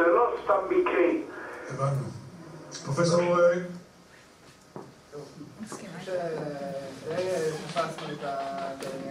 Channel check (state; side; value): identical; both; correlation 1.00